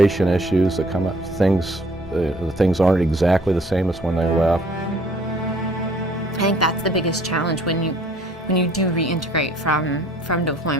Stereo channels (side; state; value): both; normal; correlation 0.57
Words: issues that come up. Things aren't exactly the same as when they left. I think that's the biggest challenge when you do reintegrate from